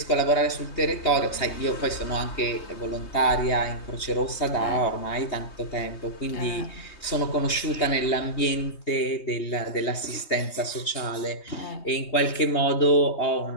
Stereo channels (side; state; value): right; late; 3.2 ms